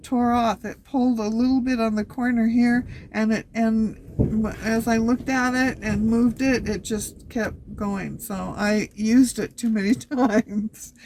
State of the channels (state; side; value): identical; both; correlation 1.00